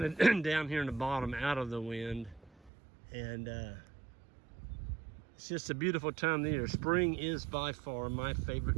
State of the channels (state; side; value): drops out; left; at 2.7 s